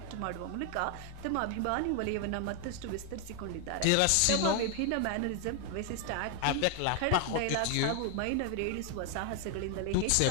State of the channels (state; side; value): different; both; correlation 0.00